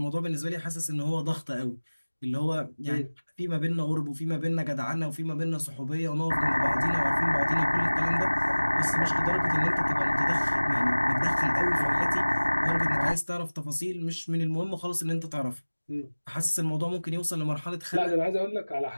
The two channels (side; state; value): both; inverted; correlation -1.00